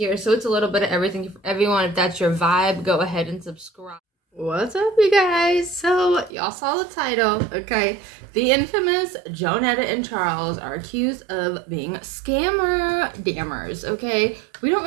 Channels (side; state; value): left; drops out; at 6.3 s